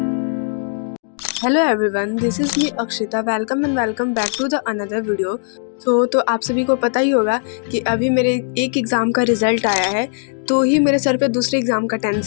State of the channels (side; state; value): right; silent; 65 dB below the other